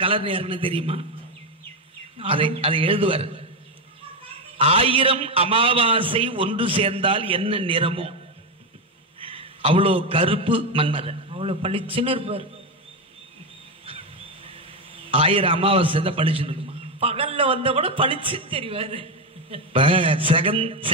கலர் நேரம்னு தெரியுமா? அதை எழுதுவார். 1000 அமாவாசை ஒன்று சேர்ந்தால் என்ன நிறமோ அவ்வளோ கருப்பு மன்மதன், அவ்வளவு பளிச்சுன்னு இருப்பார். 1000 அமாவாசை தான் பளிச்சுன்னு இருக்குமா? பகல்ல வந்த கூட பளிச்சு தெரிவாரு.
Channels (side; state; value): both; normal; correlation 0.10